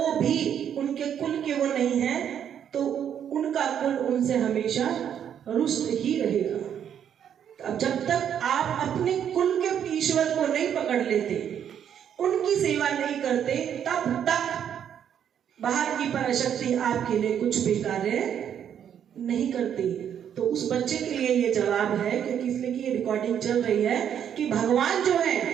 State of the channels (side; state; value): left; quieter; 9.0 dB